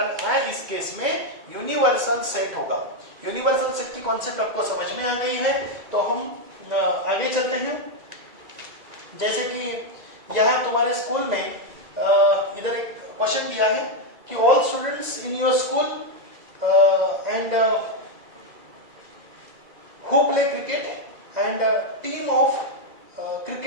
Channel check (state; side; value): late; left; 2.0 ms